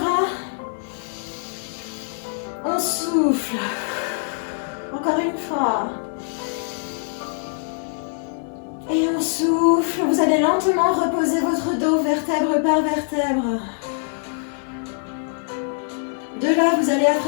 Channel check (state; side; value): silent; right; 60 dB below the other